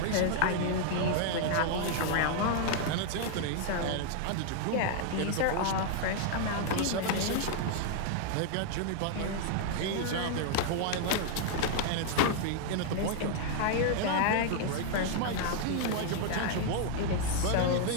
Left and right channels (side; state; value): both; different; correlation 0.00